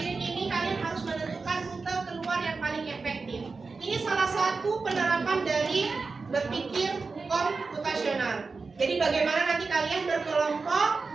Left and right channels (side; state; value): left; quieter; 4.3 dB